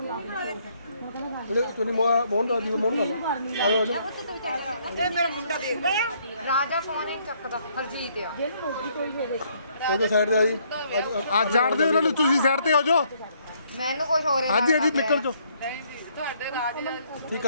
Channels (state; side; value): inverted; both; correlation -0.68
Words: ਤੁਹਾਨੂੰ ਮੋਹਨ ਦਾ ਦੀ ਮੋਹਨ ਕਰ ਆਲੋ ਆਲੋ ਇਹ ਮੇਰਾ ਮੁੰਡਾ ਦੇਖ ਲਿਆ ਰਾਜਾ ਫੋਨ ਹੀ ਚੱਕਦਾ ਹਰਜੀਤ ਆ ਉਹਦੇ ਸਾਈਡ ਤੇ ਆ ਜੀ ਆ ਜਾਣਦੇ ਉਹਨਾਂ ਨੂੰ ਤੁਸੀਂ ਸਾਈਡ ਤੇ ਹੋ ਜਾਓ ਮੈਨੂੰ ਕੁਝ ਹੋ ਰਿਹਾ ਹਾਂਜੀ ਹਾਂਜੀ ਨਿਕਲ ਜਾਓ ਤੁਹਾਡੇ ਰਾਜ ਠੀਕ